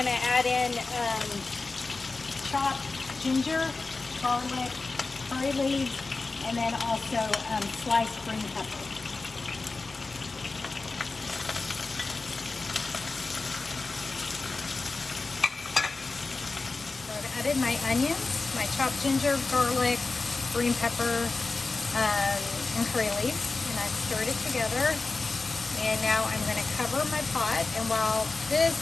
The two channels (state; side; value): quieter; right; 3.7 dB